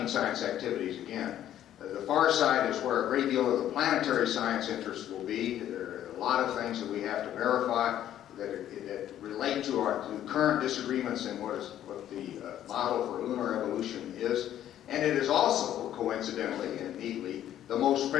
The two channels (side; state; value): right; quieter; 11.5 dB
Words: science activities again. The far side is where a great deal of the planetary science interest will be. There are a lot of things that we have to verify that relate to current disagreements in what the model for lunar evolution is. And it is also, coincidentally and neatly, the most